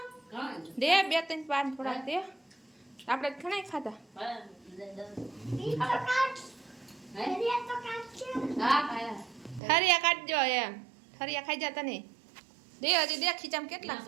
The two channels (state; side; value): drops out; left; at 9.6 s